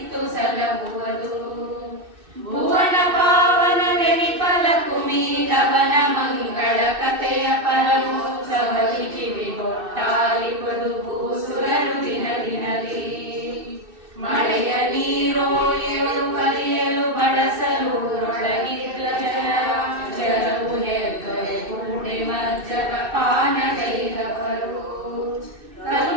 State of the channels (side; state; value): left; late; 2.6 ms